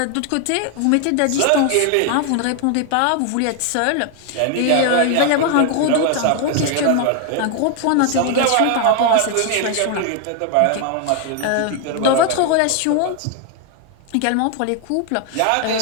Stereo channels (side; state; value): both; different; correlation 0.01